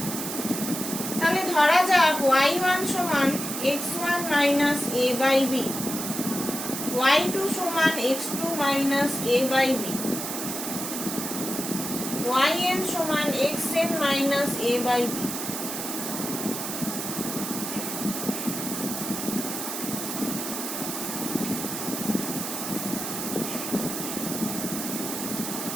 তাহলে ধরা যাক y1 সমান x1 minus a by b, y2 সমান x2 minus a by b, yn সমান xn minus a by b।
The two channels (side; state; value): right; noise; hiss, 5 dB below the sound